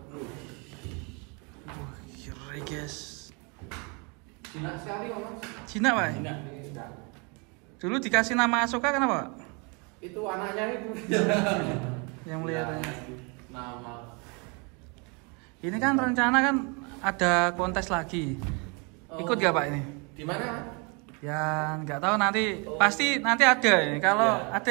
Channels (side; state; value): left; quieter; 32.2 dB